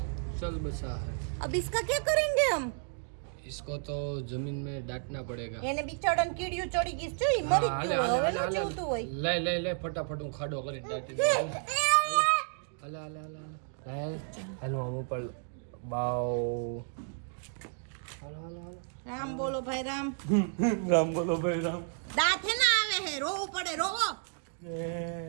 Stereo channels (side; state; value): left; silent; 56 dB below the other